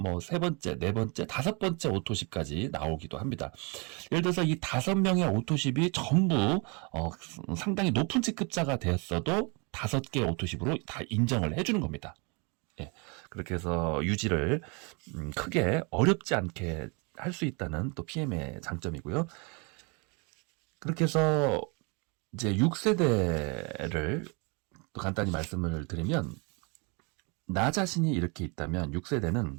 3번째, 4번째, 5번째 오토십까지 나오기도 합니다. 예를 들어서 이 5명의 오토십이 전부 상당히 높은 직급자가 되었어도 5개 오토십으로 다 인정을 해주는 겁니다. 예, 그렇게 해서 유지를 크게 어렵지 않게 할 수 있다는 또 PM의 장점이고요. 그렇게 해서 이제 6세대를 또 간단히 말씀을 드리면, 나 자신이 이렇게 있다면 6세대는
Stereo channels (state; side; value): quieter; left; 31.8 dB